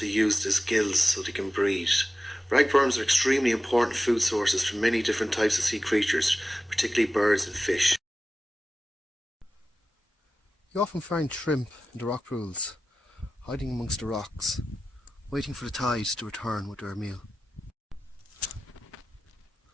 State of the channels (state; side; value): normal; both; correlation 0.95